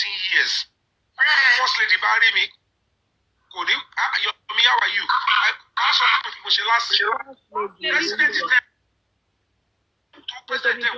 years. First lady bá rí mi kò ní Yomi, how are you? A sọ fún mi mo ṣe last year. President tẹ́ tó president tẹ́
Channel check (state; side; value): identical; both; correlation 1.00